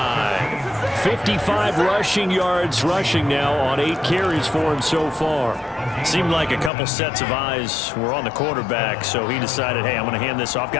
55 rushing yards rushing now on 8 carries for him so far. Seemed like a couple sets of eyes were on the quarterback, so he decided, hey, I'm going to hand this off.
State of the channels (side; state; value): right; drops out; at 6.7 s